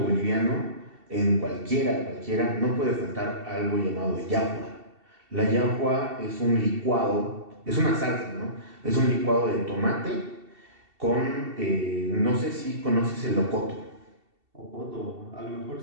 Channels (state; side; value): late; left; 2.7 ms